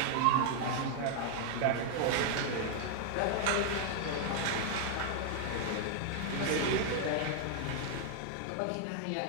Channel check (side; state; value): both; different; correlation 0.00